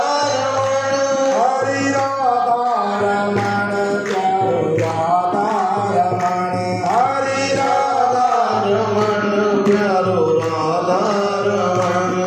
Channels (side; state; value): both; identical; correlation 1.00